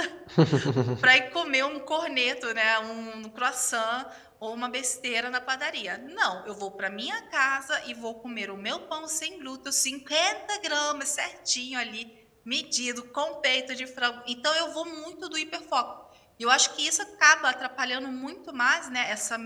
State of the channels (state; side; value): identical; both; correlation 1.00